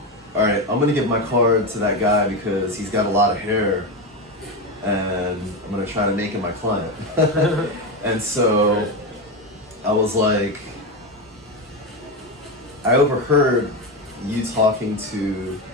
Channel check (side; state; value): both; normal; correlation 0.14